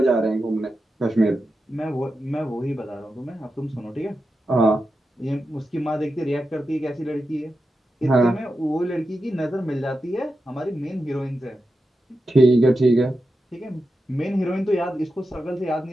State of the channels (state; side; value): normal; both; correlation 0.90